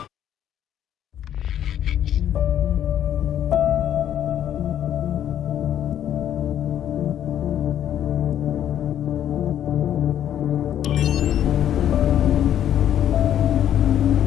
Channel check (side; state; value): right; quieter; 10.6 dB